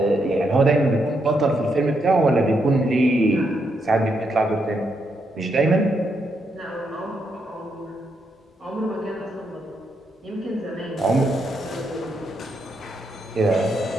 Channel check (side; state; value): both; normal; correlation 0.79